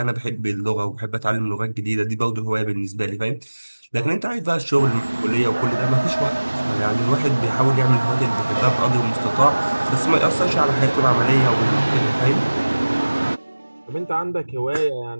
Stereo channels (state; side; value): inverted; both; correlation -1.00